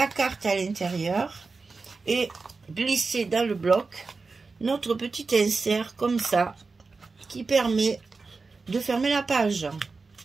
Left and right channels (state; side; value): quieter; left; 4.2 dB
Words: carte à l'intérieur et glisser dans le bloc notre petit insert comme ça qui permet de fermer la page.